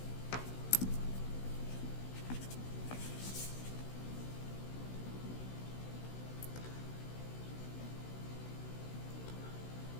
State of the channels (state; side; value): late; right; 16 ms